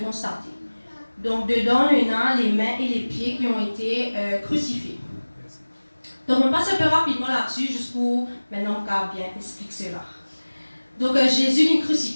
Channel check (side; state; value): both; inverted; correlation -1.00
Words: constater. Donc dedans, il y a les mains et les pieds qui ont été crucifiés. Donc on passe un peu rapidement là-dessus, juste pour maintenant qu'on bien explique cela. Donc Jésus est